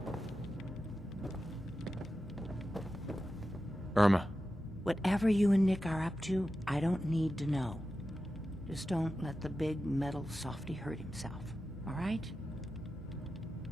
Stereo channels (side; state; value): both; normal; correlation 0.92